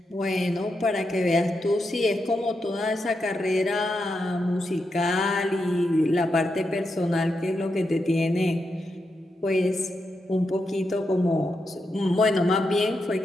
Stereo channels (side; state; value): both; normal; correlation 0.85